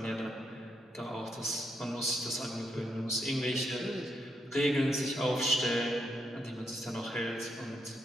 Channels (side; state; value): both; normal; correlation 0.79